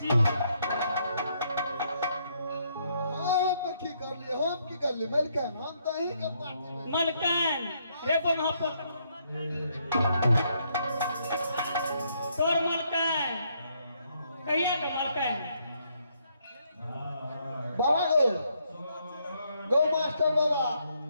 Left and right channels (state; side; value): inverted; both; correlation -0.73